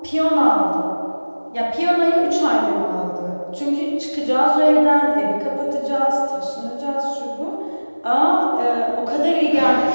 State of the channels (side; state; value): both; inverted; correlation -1.00